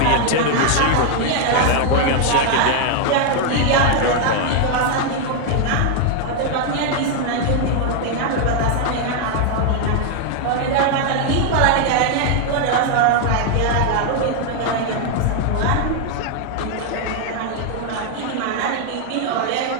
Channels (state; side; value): different; both; correlation 0.00